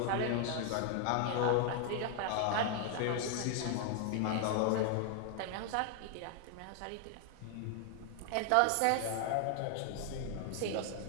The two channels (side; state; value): both; different; correlation 0.00